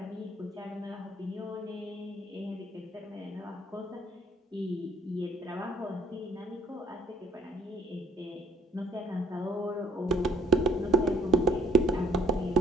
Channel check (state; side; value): normal; both; correlation 0.59